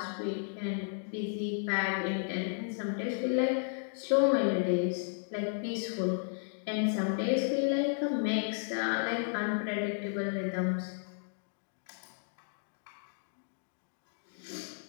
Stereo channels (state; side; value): silent; right; digital silence